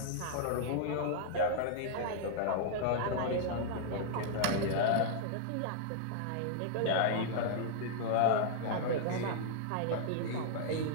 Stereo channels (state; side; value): different; both; correlation -0.01